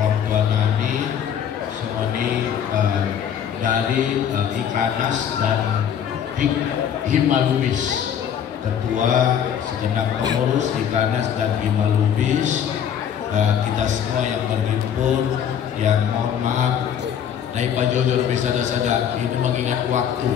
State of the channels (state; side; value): quieter; right; 8.7 dB